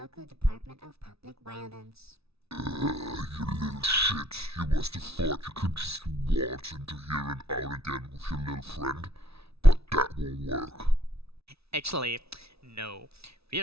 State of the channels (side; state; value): left; late; 0.78 ms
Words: Department of Public Violence. You little shit. You must have thought you could just waltz into here and out again with your little friend, but that won't work. Actually, no. We